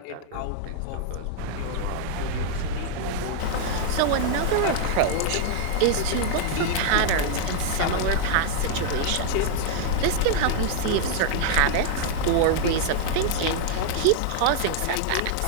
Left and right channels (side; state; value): both; different; correlation 0.00